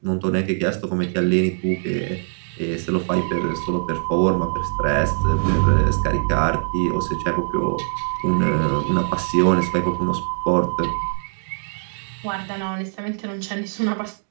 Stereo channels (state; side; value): silent; left; 56 dB below the other